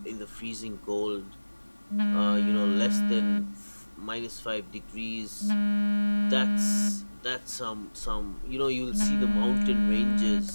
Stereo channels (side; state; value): both; inverted; correlation -1.00